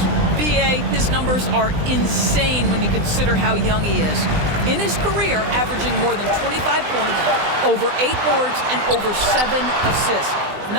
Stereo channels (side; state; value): left; late; 20 ms